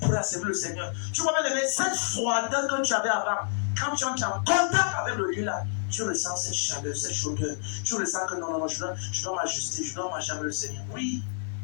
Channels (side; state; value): right; silent; digital silence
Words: à servir le Seigneur. Tu vois bien, cette froideur que tu avais avant, quand tu entres en contact avec le lieu là, tu ressens cette chaleur, cette chaudeur. Tu ressens que non, je dois m'ajuster, je dois marcher avec le Seigneur. Oui,